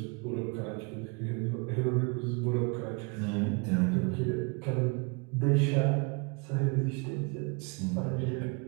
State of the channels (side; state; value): left; quieter; 32.1 dB